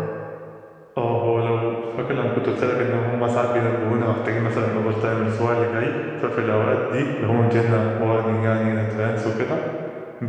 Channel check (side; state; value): both; identical; correlation 1.00